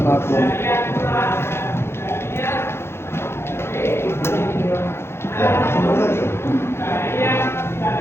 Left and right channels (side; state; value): right; late; 0.12 ms